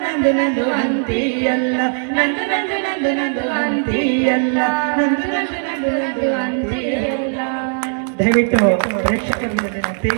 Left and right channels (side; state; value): left; silent; 61 dB below the other